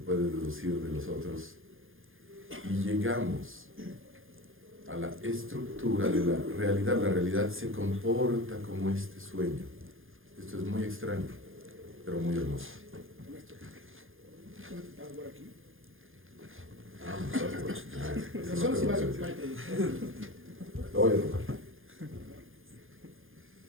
deducir de los otros? Y llegamos a la estructura de la realidad. La realidad se comporta como este sueño. Esto es muy extraño, pero muy hermoso. Lo voy a tocar.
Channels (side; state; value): left; late; 0.59 ms